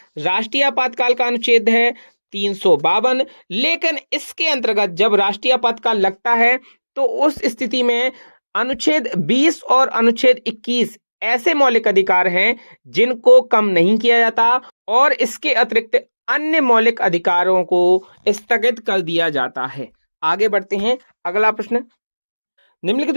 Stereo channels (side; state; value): both; inverted; correlation -1.00